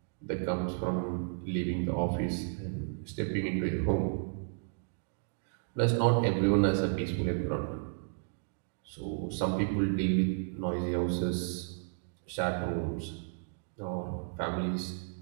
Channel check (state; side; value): silent; left; digital silence